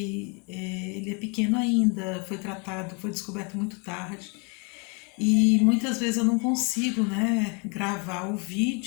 ele é pequeno ainda, foi descoberto muito tarde. E muitas vezes eu não consigo, né, gravar o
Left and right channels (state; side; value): quieter; right; 33.7 dB